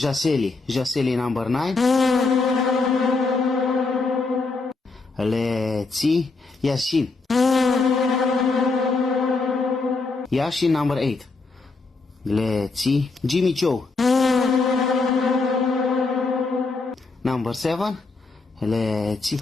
Jaseli number 9. Let's see. Yashin. Yashin number 8. Let's see. Jimmy Choo. Number 7. Let's see.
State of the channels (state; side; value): quieter; right; 3.9 dB